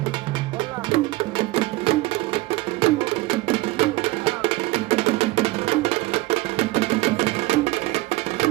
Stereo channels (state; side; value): quieter; left; 19.8 dB